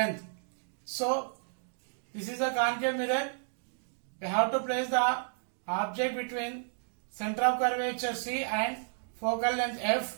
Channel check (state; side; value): silent; left; digital silence